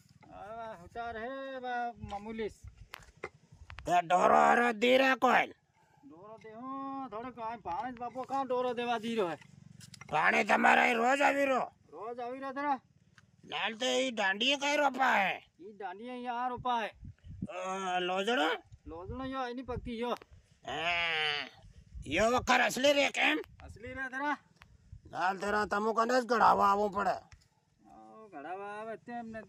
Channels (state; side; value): identical; both; correlation 1.00